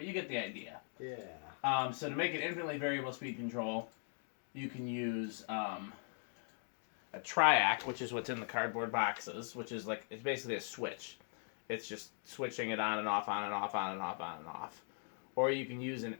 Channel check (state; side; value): silent; right; 51 dB below the other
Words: you get the idea. Yeah. So to make an infinitely variable speed control, you can use a triac, which is what's in the cardboard boxes, which is like, it's basically a switch. It's just switching it on and off, on and off, on and off, on and off. Or you can use an